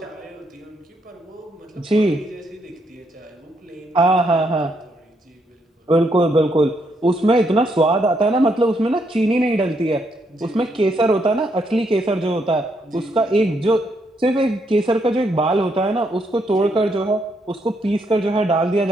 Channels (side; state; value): both; normal; correlation 0.76